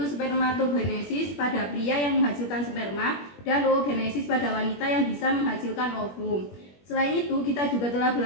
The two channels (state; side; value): late; right; 21 ms